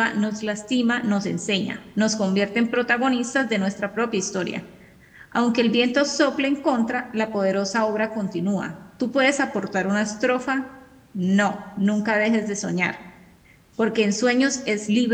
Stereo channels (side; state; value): both; identical; correlation 1.00